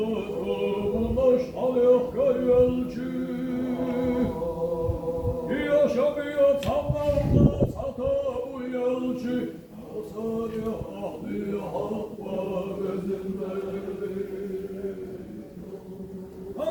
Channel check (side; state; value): both; identical; correlation 1.00